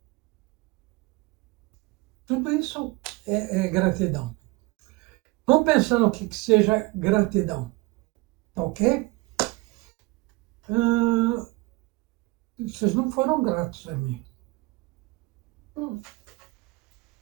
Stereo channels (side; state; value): left; quieter; 22.8 dB